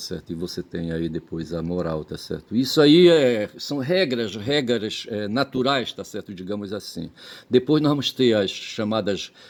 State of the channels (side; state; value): both; identical; correlation 1.00